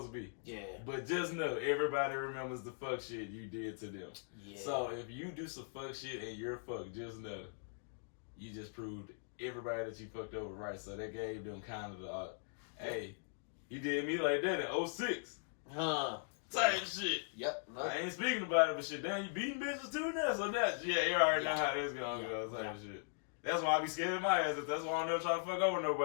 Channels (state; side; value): silent; right; digital silence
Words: to be. Yeah. But just know everybody remembers the fuck shit you did to them. Yeah. So if you do some fuck shit and you're fucked, just know you just proved everybody that you fucked over right. So that gave them kind of the hey. You did me like that in 06. Type shit. Yep. No. I ain't speaking about it, but shit, damn, you beating bitches too now. So that's, you already know how that's gonna go. Type shit. That's why I be scared of my ass. That's why I don't never try to fuck over